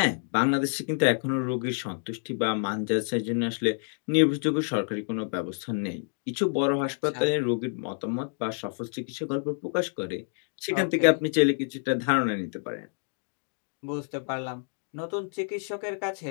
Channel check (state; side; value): silent; right; 58 dB below the other